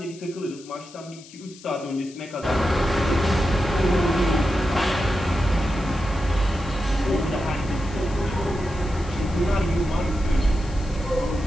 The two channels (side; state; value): left; noise; hiss, 20 dB below the sound